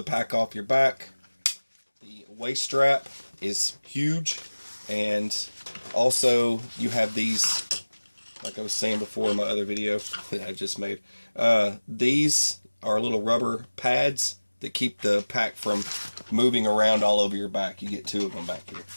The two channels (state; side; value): inverted; both; correlation -1.00